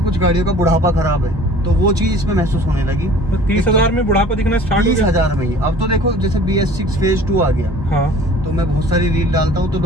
गाड़ियों का बुढ़ापा खराब है, तो वो चीज इसमें महसूस होने लगी। तो 30,000 में बुढ़ापा दिखना स्टार्ट हो गया? 30,000 में ही। अब तो देखो, जैसे BS6 फेज 2 आ गया। हाँ। तो मैं बहुत सारी रील डालता हूँ तो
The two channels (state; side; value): normal; both; correlation 0.47